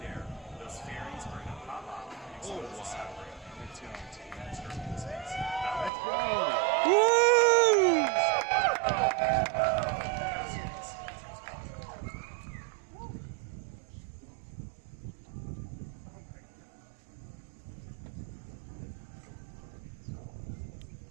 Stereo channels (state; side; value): drops out; left; at 5.9 s